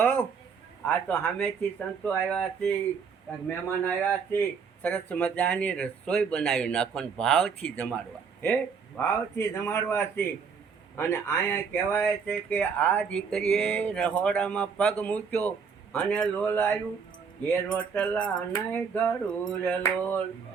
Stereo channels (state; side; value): quieter; left; 5.9 dB